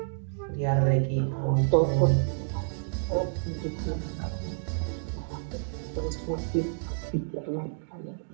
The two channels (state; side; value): silent; left; digital silence